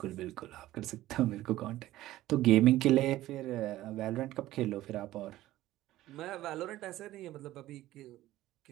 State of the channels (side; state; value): left; quieter; 15.4 dB